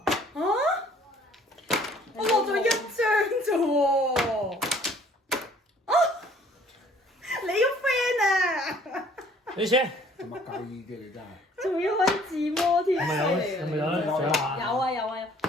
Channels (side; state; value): both; normal; correlation 0.57